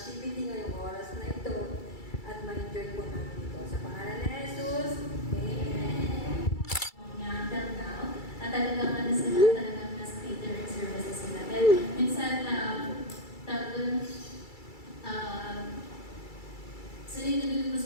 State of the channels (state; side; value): late; right; 2.3 ms